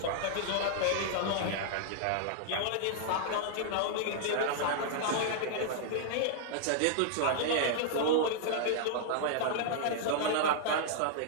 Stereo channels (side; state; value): both; different; correlation -0.01